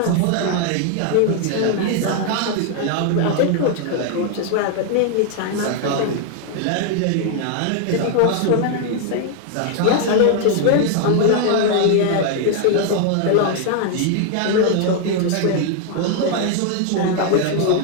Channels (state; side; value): different; both; correlation 0.00